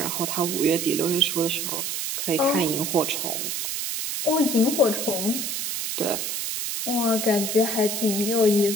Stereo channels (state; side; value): noise; right; hiss, 3 dB below the sound